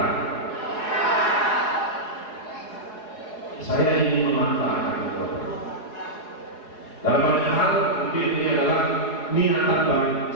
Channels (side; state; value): right; late; 4.7 ms